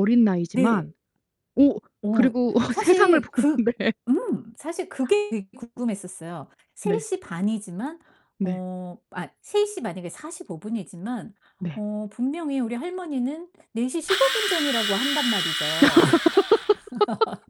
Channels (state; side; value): identical; both; correlation 1.00